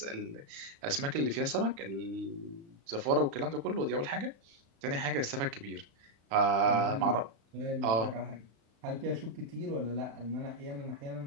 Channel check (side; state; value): left; late; 35 ms